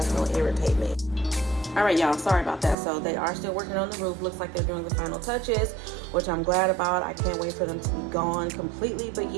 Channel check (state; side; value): drops out; left; at 2.8 s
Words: going to irritate me. All right, y'all, sorry about that. So they are still working on the roof. Looks like they're doing the final touches, which I'm glad about. I can't wait for them to be gone completely. But